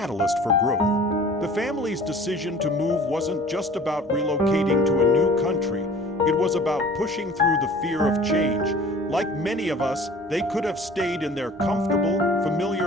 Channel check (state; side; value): normal; both; correlation 0.47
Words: for growth. The family's decision to move wasn't just about relocating to a new country. It was about pushing through the fear of change. Like many of us, they could have stayed in their comfortable,